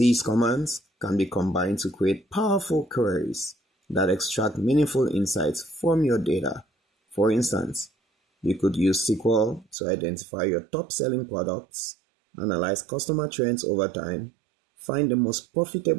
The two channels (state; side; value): drops out; left; at 9.8 s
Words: commands can be combined to create powerful queries that extract meaningful insights from your data. For instance, you could use SQL to identify your top-selling products, analyze customer trends over time, find the most